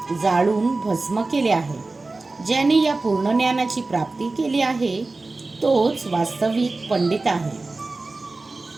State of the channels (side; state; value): left; quieter; 3.4 dB